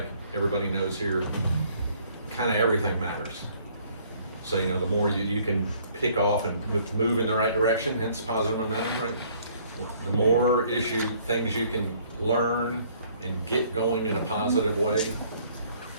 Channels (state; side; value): inverted; both; correlation -0.61